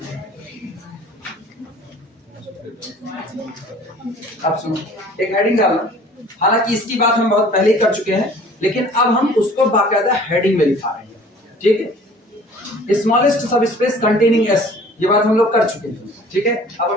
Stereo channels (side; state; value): both; normal; correlation 0.50